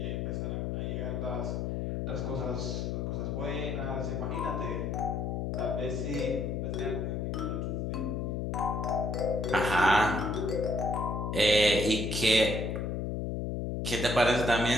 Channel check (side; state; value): left; noise; hum, 1 dB below the sound